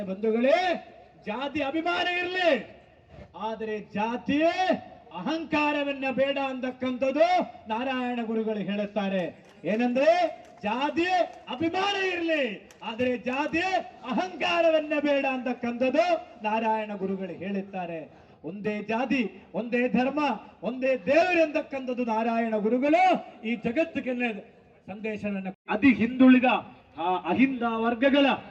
ಬಂಧುಗಳೇ, ಜಾತಿ ಅಭಿಮಾನ ಇರಲಿ, ಆದರೆ ಜಾತಿಯೇ ಅಹಂಕಾರವನ್ನ ಬೇಡ ಅಂತಕ್ಕಂಥದ್ದು ನಾರಾಯಣ ಗುರುಗಳು ಹೇಳುತ್ತಾರೆ. ಏನಂದ್ರೆ ಜಾತಿ ಅಭಿಮಾನ ಇರಲಿ, ಆದರೆ ಜಾತಿ ಅಹಂಕಾರವನ್ನ ಬೇಡ ಅಂತಕ್ಕಂಥದ್ದು ನಾರಾಯಣ ಗುರುಗಳು ಹೇಳುತ್ತಾರೆ. ಒಂದೇ ಜಾತಿ, ಒಂದೇ ಧರ್ಮ, ಒಂದೇ ದೇವರು ಎಂದಕ್ಕಂಥದ್ದು ನಾರಾಯಣ ಗುರುಗಳು ಈ ಜಗತ್ತಿಗೆ ಸಂದೇಶವನ್ನು ಅತಿ ಹಿಂದುಳಿದ ಅಹಿಂದ ವರ್ಗಗಳ,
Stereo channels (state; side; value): identical; both; correlation 1.00